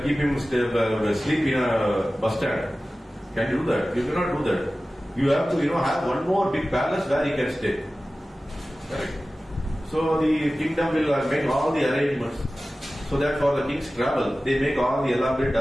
keep him sleep in a bus stand. Can you do that? You cannot do that. You have to, have one more big palace where he can stay. Correct? So the kingdom will make all the arrangements so that for the king's travel, they make all the elaborate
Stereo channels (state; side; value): normal; both; correlation 0.96